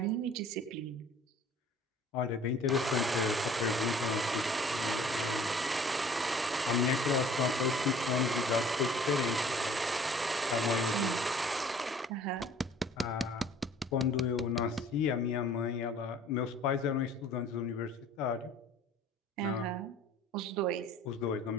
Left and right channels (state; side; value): normal; both; correlation 0.51